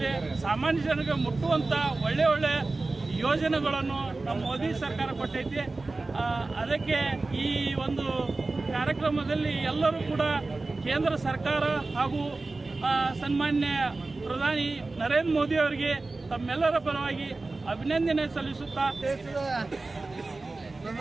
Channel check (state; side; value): quieter; left; 3.4 dB